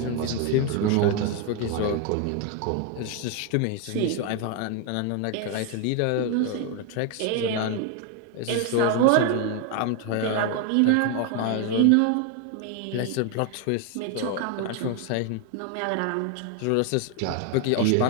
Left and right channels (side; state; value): both; different; correlation 0.01